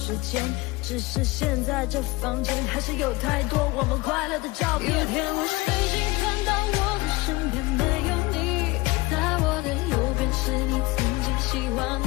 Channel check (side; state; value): right; quieter; 22.3 dB